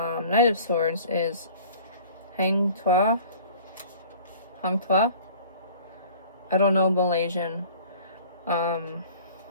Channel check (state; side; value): inverted; both; correlation -0.47